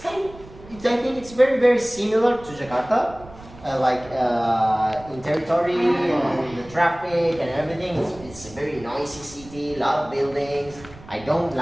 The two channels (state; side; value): noise; right; rumble, 19 dB below the sound